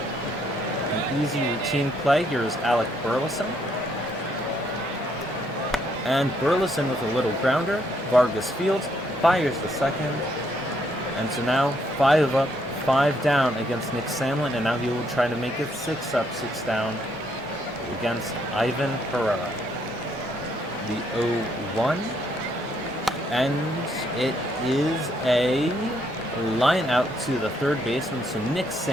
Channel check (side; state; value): both; normal; correlation 0.72